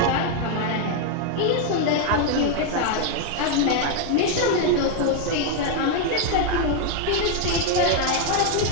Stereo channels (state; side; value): different; both; correlation 0.00